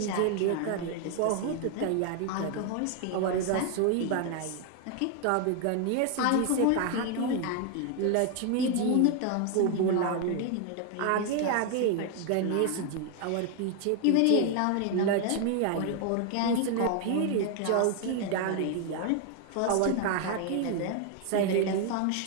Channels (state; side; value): different; both; correlation 0.01